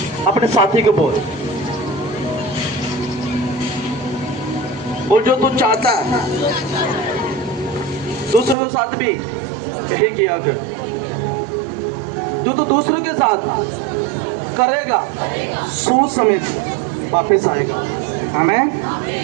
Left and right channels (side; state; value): left; drops out; at 8.6 s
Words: अपने साथी को बोल जो तू चाहता है दूसरों के साथ भी यही किया कर। जो तू दूसरों के साथ करेगा सूद समेत वापस आएगा। आमीन।